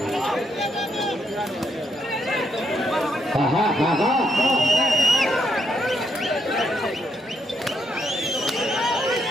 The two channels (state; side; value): normal; both; correlation 0.76